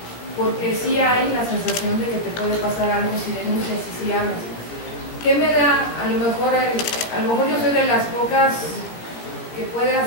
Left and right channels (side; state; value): right; late; 17 ms